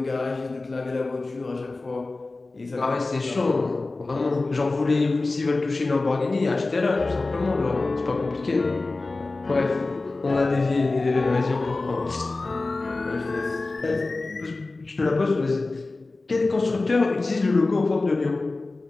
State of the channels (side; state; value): right; quieter; 3.4 dB